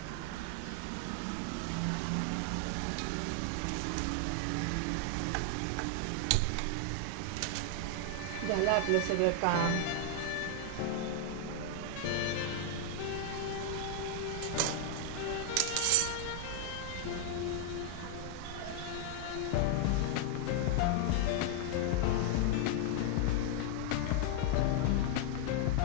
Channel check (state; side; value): different; both; correlation 0.00